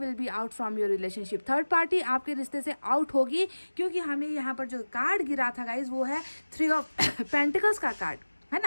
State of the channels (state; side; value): inverted; both; correlation -1.00